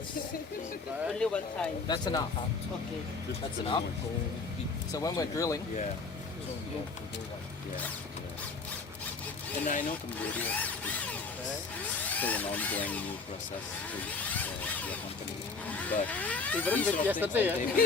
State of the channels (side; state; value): right; quieter; 4.3 dB